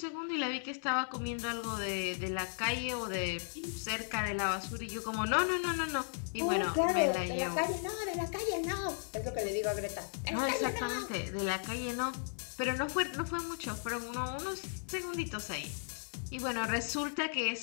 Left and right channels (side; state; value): right; silent; digital silence